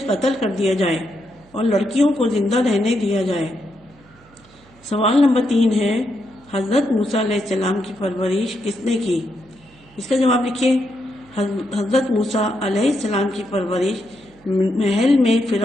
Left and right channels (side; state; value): right; noise; hum, 28 dB below the sound